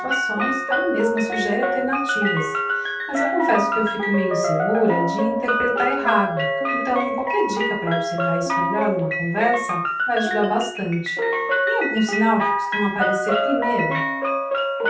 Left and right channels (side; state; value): both; identical; correlation 1.00